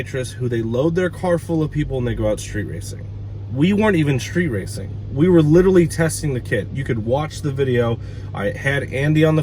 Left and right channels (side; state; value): both; identical; correlation 1.00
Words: who they load their car full of people and they go out street racing. We weren't even street racing. We were literally testing the kit. You could watch the video. I had Andy on the